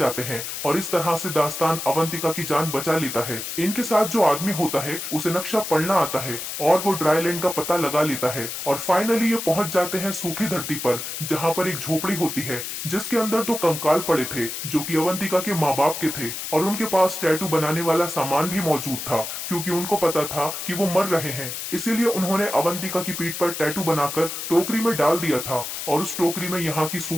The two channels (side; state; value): left; noise; hiss, 6 dB below the sound